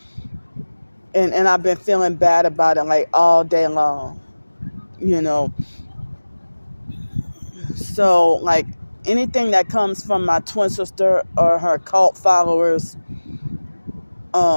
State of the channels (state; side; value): inverted; both; correlation -1.00